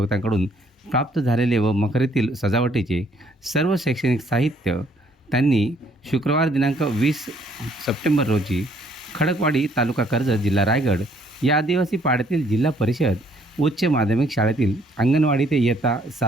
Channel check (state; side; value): normal; both; correlation 0.65